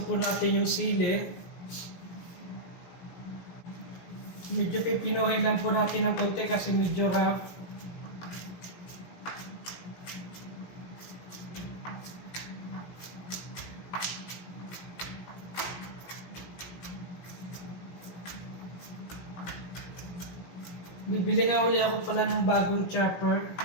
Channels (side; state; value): right; late; 17 ms